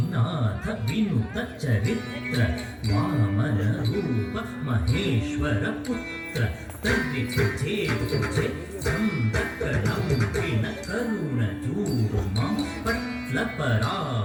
विनुत चरित्र वामन रूप महेश्वर पुत्र तर्रि तुझे तुझे संतकलंकिन करुण जूर्मा पट्ल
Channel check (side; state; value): both; identical; correlation 1.00